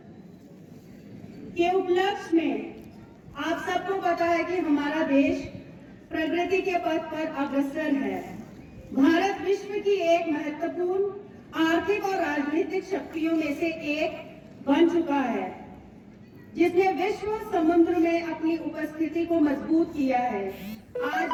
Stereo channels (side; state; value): both; identical; correlation 1.00